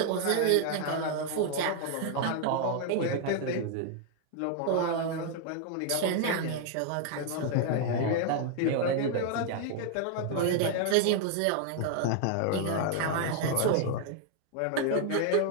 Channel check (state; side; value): different; both; correlation 0.00